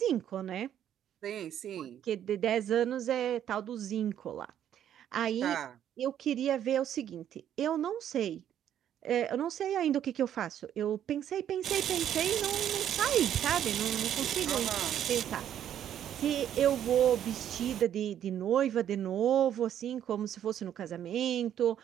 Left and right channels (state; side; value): quieter; left; 10.3 dB